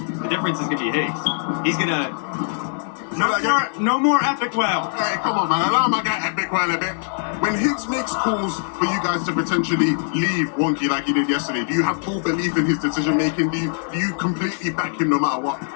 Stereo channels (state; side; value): silent; right; digital silence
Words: the difference is going to be Higgs. He's going to... No more Epic Well. Hey, come on, man. Allow my guy Epic Well a bit. When Higgs makes calls for you guys to potentially leave Wonky like he did yesterday, do you have full belief in his decision-making? Do you completely back him no matter what?